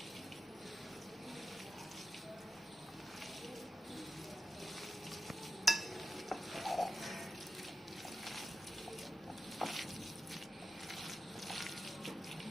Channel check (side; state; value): both; normal; correlation 0.90